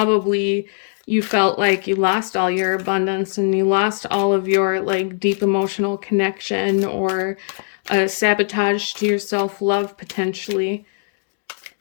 you felt like you lost all your abundance and you lost all of your like deep emotional connection, or sabotage to your self-love potentially.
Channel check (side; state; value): right; silent; digital silence